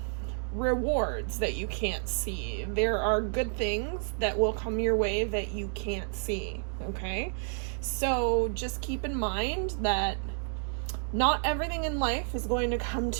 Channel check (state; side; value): silent; left; 58 dB below the other